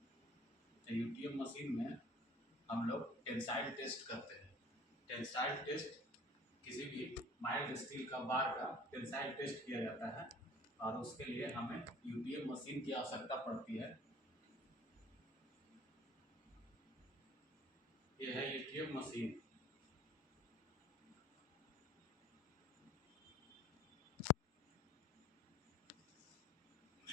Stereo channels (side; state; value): both; normal; correlation 0.49